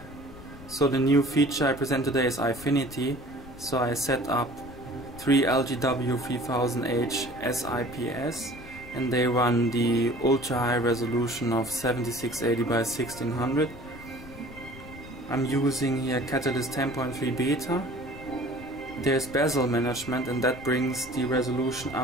so the new feature I present today is Eyefinity. So I set up 3 LGW 3000H S-IPS and they run the ultra high resolution of 7680 by 1600. I'm using here Catalyst 10.3 beta. There's bezel management and that brings the resolution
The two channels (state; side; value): noise; left; rumble, 17 dB below the sound